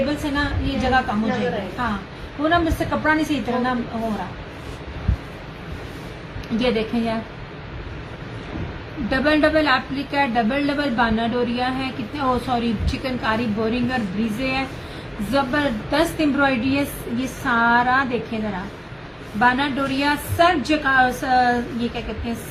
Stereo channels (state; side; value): identical; both; correlation 1.00